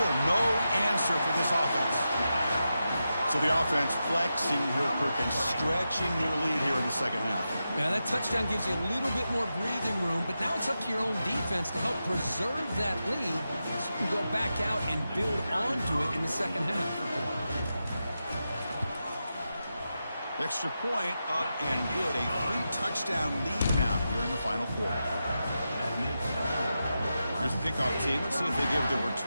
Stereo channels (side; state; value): both; inverted; correlation -0.89